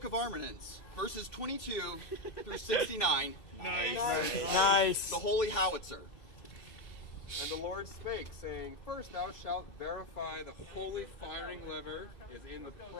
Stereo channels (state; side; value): late; right; 2.7 ms